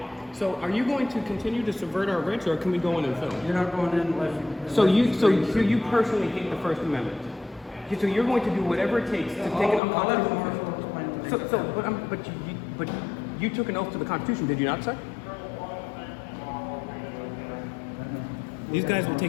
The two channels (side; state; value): right; drops out; at 9.8 s